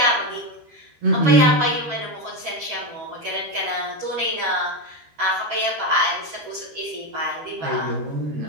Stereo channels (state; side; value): late; left; 13 ms